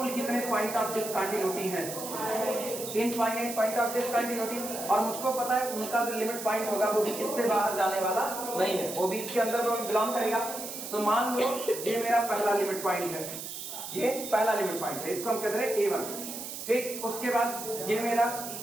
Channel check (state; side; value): noise; right; hiss, 8 dB below the sound